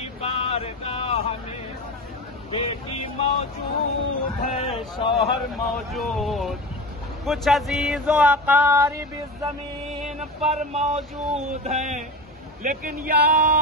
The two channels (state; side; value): normal; both; correlation 0.26